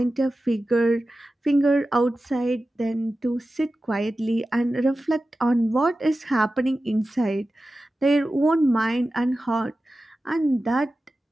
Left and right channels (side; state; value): both; normal; correlation 0.94